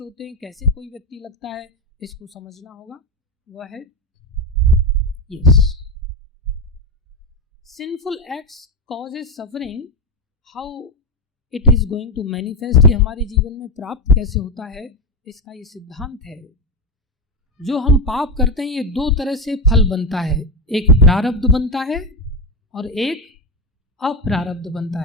होते हैं, कैसे कोई व्यक्ति लगता है, इसको समझना होगा. वह है yes, sinful acts causes suffering, how it is going to manifest. ये हमारे जीवन में प्राप्त कैसे होता है, इसका ये सिद्धांत है. जो हम पाप करते हैं, ये दो तरह से फल बनता है. एक प्रारब्ध बनता है और एक अप्रारब्ध बनता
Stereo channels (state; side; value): normal; both; correlation 0.11